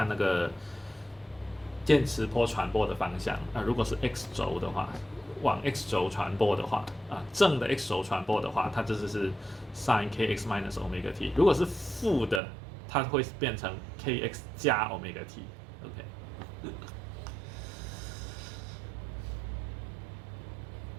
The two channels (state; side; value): drops out; left; at 12.4 s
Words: 那个电磁波传播的方向。如果是 x 轴的话，往 x 轴传播的话，正的 x 轴传播的话，它就是 sin kx minus omega t。如果是负的，它会变成 kx 加 omega